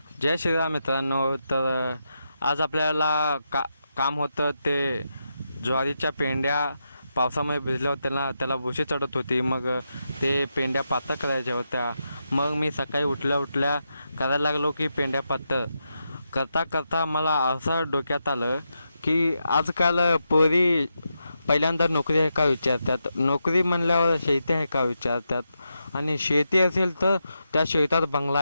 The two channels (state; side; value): inverted; both; correlation -0.85